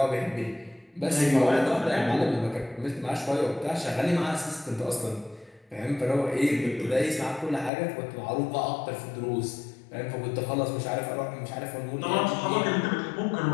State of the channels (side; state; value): right; drops out; at 7.7 s